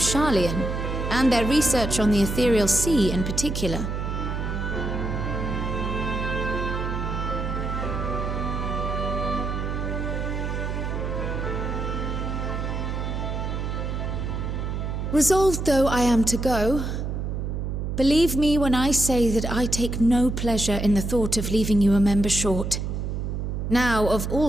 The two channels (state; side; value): noise; right; hum, 3 dB below the sound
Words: and their research on the Ethereal Sea in particular. Resolved though I am to go, believe me when I say that I take no pleasure in the thought of leaving you a member short. Now, of